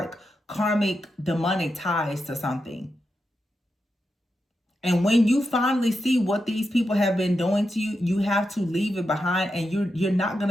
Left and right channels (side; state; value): both; normal; correlation 0.87